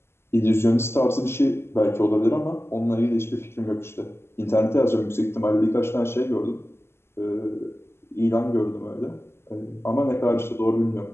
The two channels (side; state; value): right; late; 0.12 ms